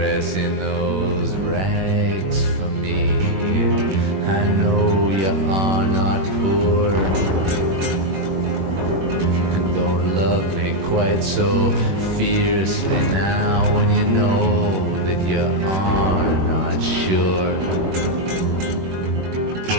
in those rags for me. I know you are not poor, and don't love me quite so fiercely now when you know that you are not sure.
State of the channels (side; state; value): left; late; 21 ms